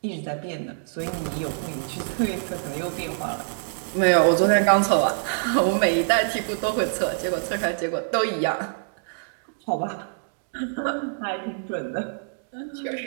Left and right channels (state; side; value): silent; left; digital silence